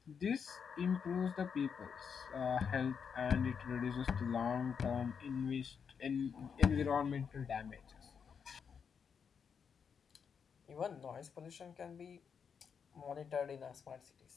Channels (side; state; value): right; quieter; 6.7 dB